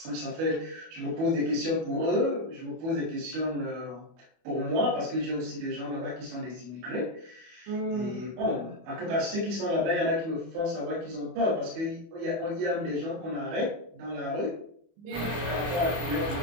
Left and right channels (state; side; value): late; left; 25 ms